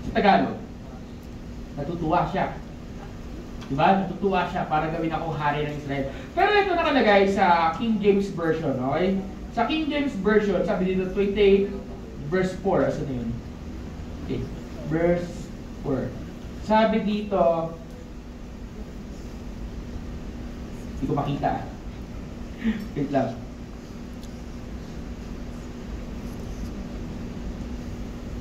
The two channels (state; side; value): identical; both; correlation 1.00